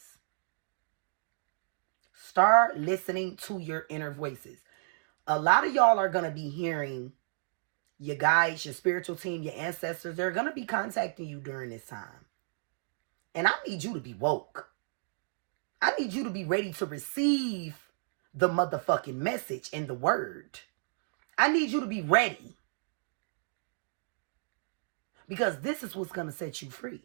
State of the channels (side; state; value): left; silent; digital silence